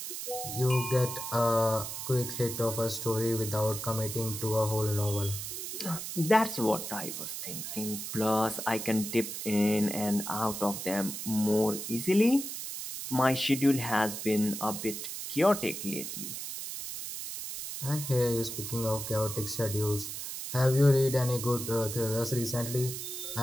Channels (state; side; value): noise; right; hiss, 6 dB below the sound